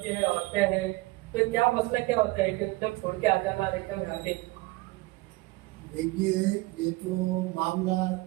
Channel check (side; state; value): left; quieter; 21.4 dB